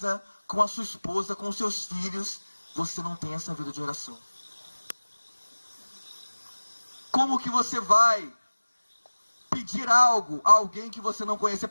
com a sua esposa, com os seus filhos, você não tem essa vida de oração. Como que você vai pedir algo a alguém que você não conhece? Você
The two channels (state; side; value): inverted; both; correlation -1.00